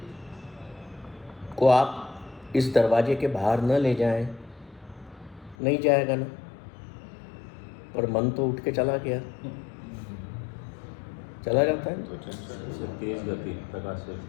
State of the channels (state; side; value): drops out; right; at 5.6 s